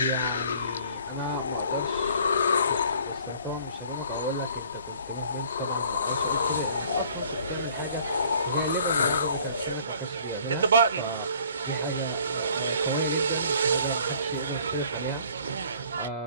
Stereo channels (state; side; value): inverted; both; correlation -0.54